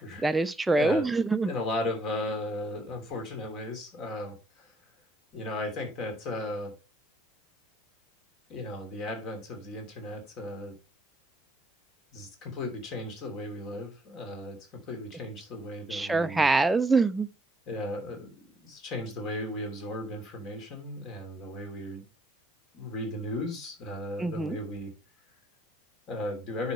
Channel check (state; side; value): normal; both; correlation 0.68